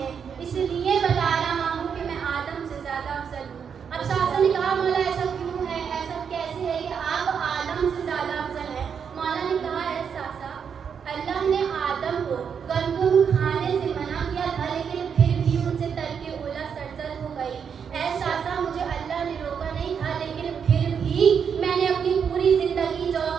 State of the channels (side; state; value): left; quieter; 7.0 dB